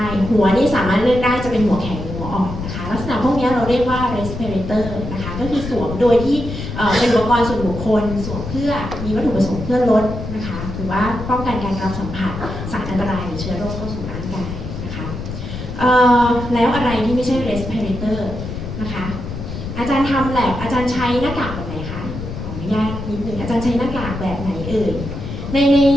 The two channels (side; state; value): left; noise; rumble, 7 dB below the sound